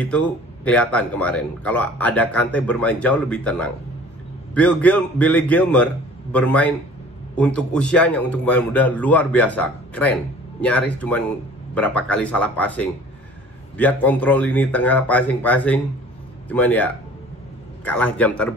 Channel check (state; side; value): normal; both; correlation 0.48